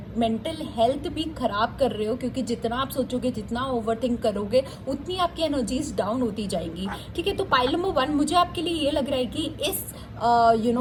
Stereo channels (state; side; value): identical; both; correlation 1.00